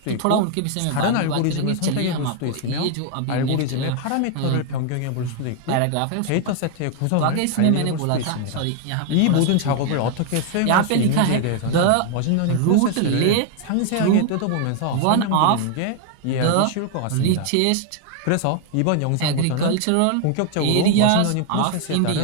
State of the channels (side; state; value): both; different; correlation 0.00